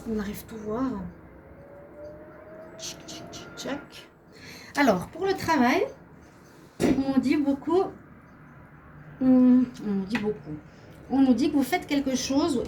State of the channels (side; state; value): both; identical; correlation 1.00